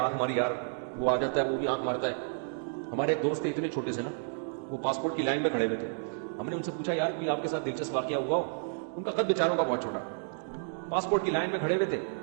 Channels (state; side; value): silent; left; digital silence